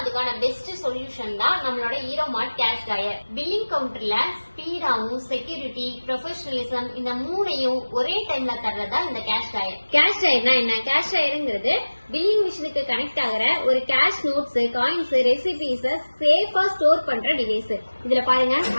அதுக்கான பெஸ்ட் சொல்யூஷன் தான் நம்மளோட Hero Mart cash drawer. Billing கவுண்டர்ல ஸ்பீடாவும் செக்யூரிட்டி, ப்ரொஃபஷனலிசம் இந்த மூணையும் ஒரே டைம்ல தர்றதா இந்த கேஷ் ட்ராயர். கேஷ் ட்ராயர்னா என்ன? கேஷ் ட்ராயருங்கிறது பில்லிங் மிஷினுக்கு கனெக்ட் ஆகிற ஒரு கேஷ் நோட்ஸ், காயின்ஸ், ரெசிபிஸ் சேஃபா ஸ்டோர் பண்ற டிவைஸ். இதுல பாருங்க,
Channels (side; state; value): both; inverted; correlation -1.00